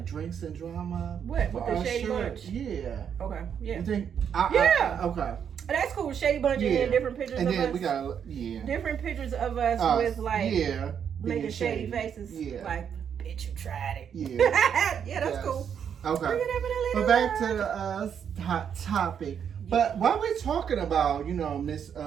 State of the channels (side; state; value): left; quieter; 8.0 dB